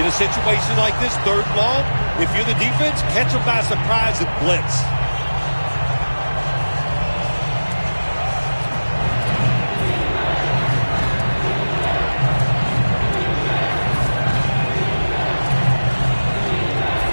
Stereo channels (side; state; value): both; inverted; correlation -1.00